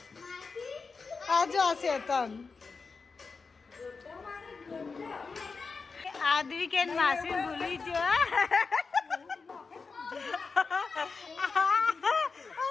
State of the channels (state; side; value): quieter; right; 4.6 dB